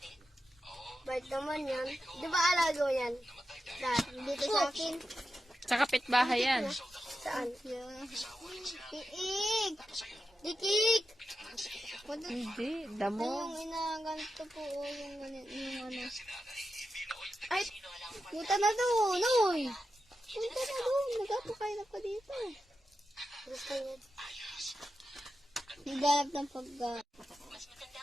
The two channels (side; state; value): both; normal; correlation 0.90